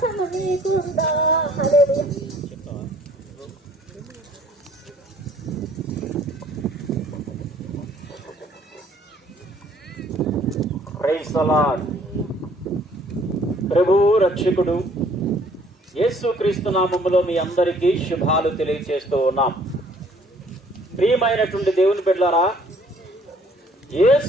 నీకుందా? హల్లెలూయా. Praise the Lord. ప్రభు రక్షకుడు యేసుక్రీస్తు నామములో మీ అందరికీ శుభాలు తెలియజేస్తూ ఉన్నాం. ప్రియమైనటువంటి దేవుని బిడ్డలారా,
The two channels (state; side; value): normal; both; correlation 0.59